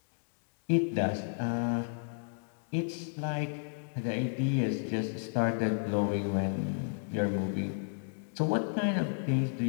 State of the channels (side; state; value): right; silent; digital silence